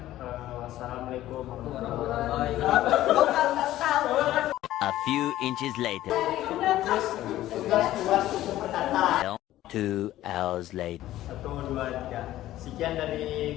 Wassalamualaikum warahmatullahi wabarakatuh. A few inches later. Tugas berkata. 2 hours later. 1, 2, 3. Sekian dari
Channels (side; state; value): right; quieter; 14.4 dB